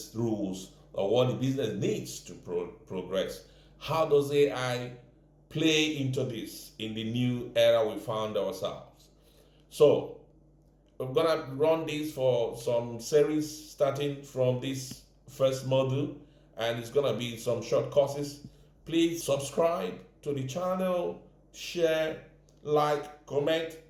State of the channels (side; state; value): both; identical; correlation 1.00